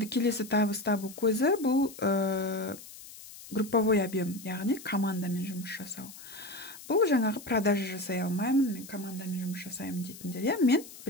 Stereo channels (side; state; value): left; noise; hiss, 16 dB below the sound